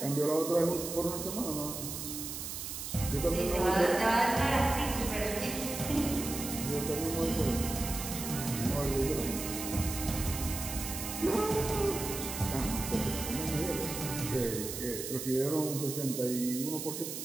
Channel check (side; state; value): right; noise; hiss, 6 dB below the sound